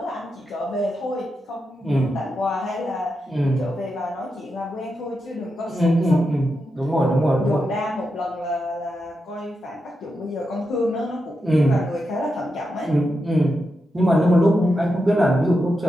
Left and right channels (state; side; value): normal; both; correlation 0.87